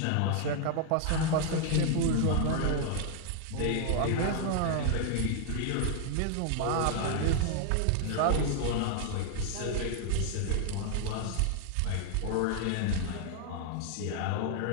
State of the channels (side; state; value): both; different; correlation 0.00